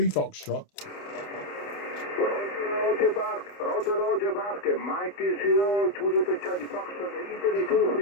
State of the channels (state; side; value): late; right; 28 ms